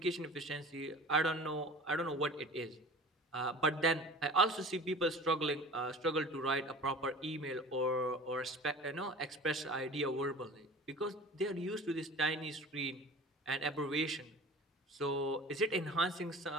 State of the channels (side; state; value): both; normal; correlation 0.41